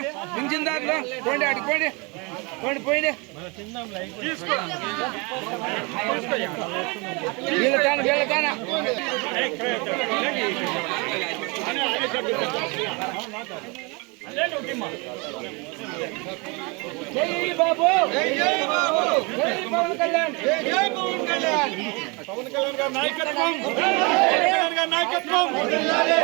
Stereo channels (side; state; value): left; quieter; 29.1 dB